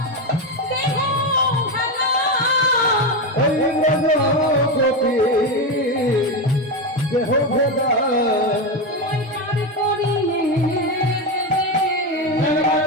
দেহ খেলা, ওই ব্রজগোপী দেহ ভেদা ওই পার করিয়ে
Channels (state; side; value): normal; both; correlation 0.13